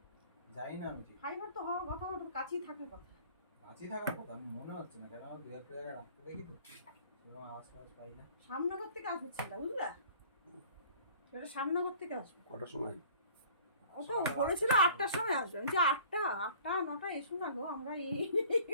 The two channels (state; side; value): inverted; both; correlation -0.50